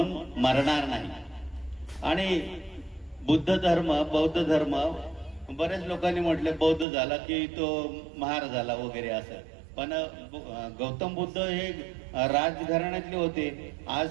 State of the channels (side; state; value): left; drops out; at 6.9 s